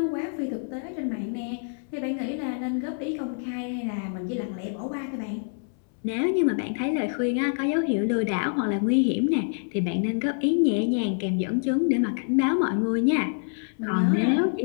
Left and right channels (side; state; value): right; silent; 61 dB below the other